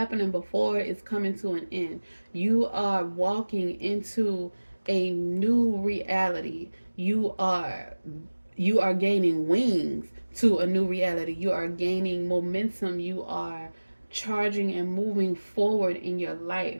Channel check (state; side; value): inverted; both; correlation -1.00